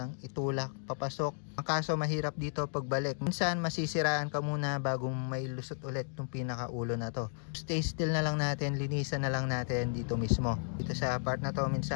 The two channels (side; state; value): right; silent; digital silence